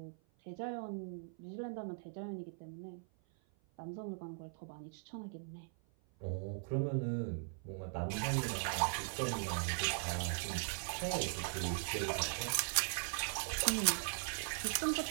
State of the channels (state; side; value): silent; left; 51 dB below the other